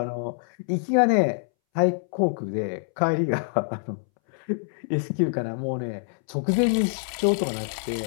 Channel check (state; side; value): silent; right; 61 dB below the other